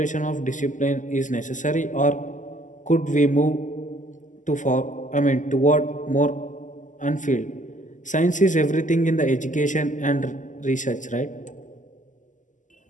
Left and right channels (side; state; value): right; late; 0.37 ms